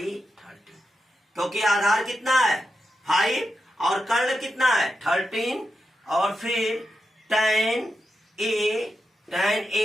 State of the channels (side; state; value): both; normal; correlation 0.87